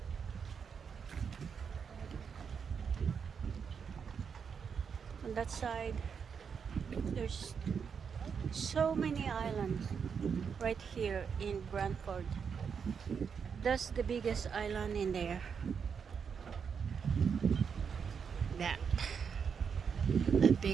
On that side, there's so many islands right here in Branford. That's the biggest island in there. That. A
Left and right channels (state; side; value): quieter; left; 6.5 dB